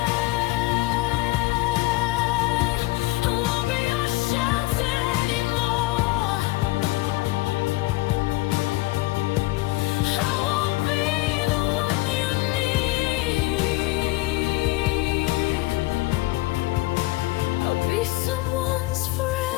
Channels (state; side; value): quieter; right; 20.7 dB